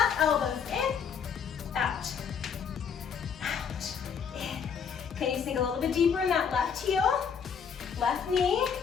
Elbows in. Out. Out. In. Can you sink a little bit deeper in that left heel? Left knee.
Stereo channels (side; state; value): right; quieter; 6.9 dB